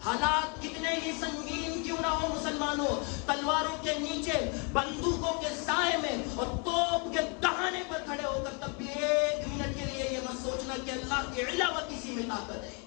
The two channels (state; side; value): quieter; right; 35.1 dB